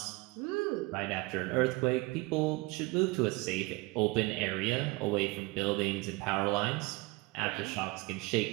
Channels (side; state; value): left; quieter; 23.8 dB